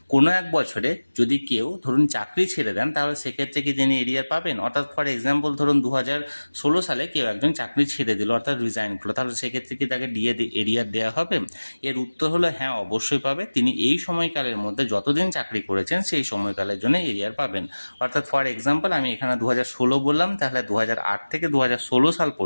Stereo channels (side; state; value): both; inverted; correlation -1.00